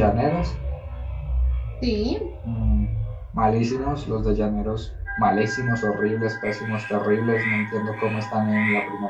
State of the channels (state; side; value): identical; both; correlation 1.00